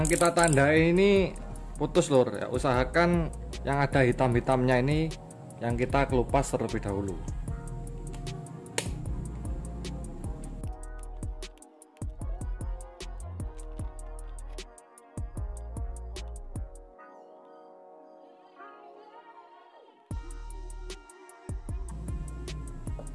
kita tandai ini putus lor ya. Usahakan yang ada hitam-hitamnya ini yang kita kelupas terlebih dahulu.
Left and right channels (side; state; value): both; identical; correlation 1.00